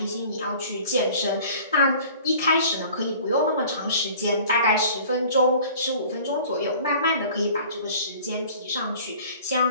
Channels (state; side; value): inverted; both; correlation -0.48